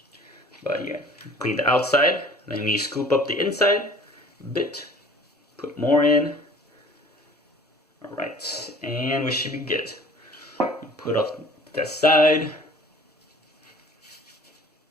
But yeah, clean the outside. Let me scoop up the inside a bit. Put more in. All right, and we should be good. Put off that side.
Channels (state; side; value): normal; both; correlation 0.50